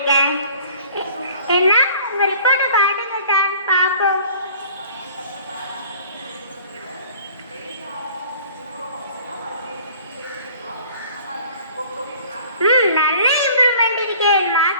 என்ன, உங்க ரிப்போர்ட்டை காட்டுங்க சார், பாப்போம். நல்ல இம்ப்ரூவ்மெண்ட் இருக்கே.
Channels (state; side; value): inverted; both; correlation -0.50